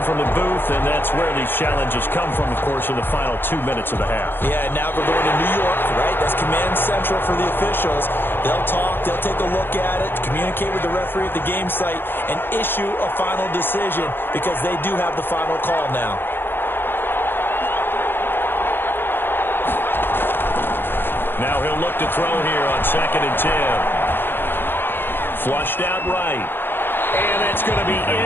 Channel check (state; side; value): late; right; 0.10 ms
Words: from the booth, and that's where these challenges come from, of course, in the final 2 minutes of the half. Yeah, now we're going to New York, right? That's command central for the officials. They'll talk, they'll take a look at it, communicate with the referee at the game site, and issue a final decision because they do have the final call now. Now he'll look to throw here on second and 10. Flushed out right. And it's going to be